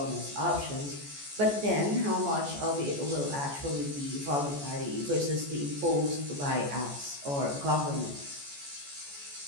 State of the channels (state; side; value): late; left; 14 ms